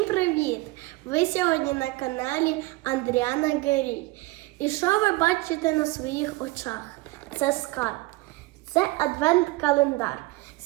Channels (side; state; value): left; quieter; 21.0 dB